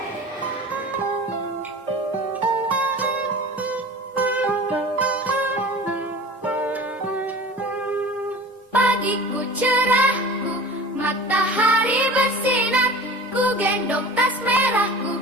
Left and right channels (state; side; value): normal; both; correlation 0.38